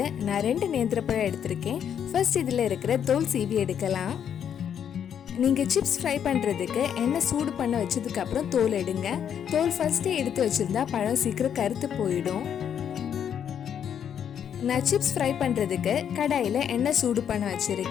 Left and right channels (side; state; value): right; quieter; 8.6 dB